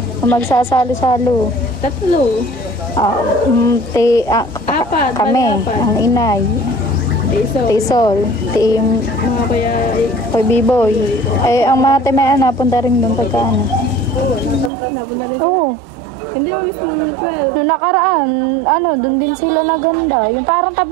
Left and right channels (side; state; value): left; drops out; at 14.7 s